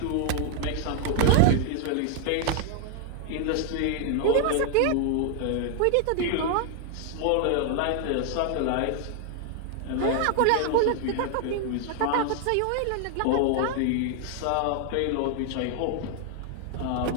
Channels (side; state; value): both; different; correlation 0.00